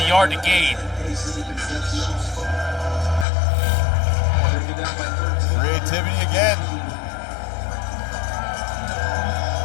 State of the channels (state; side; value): drops out; right; at 3.2 s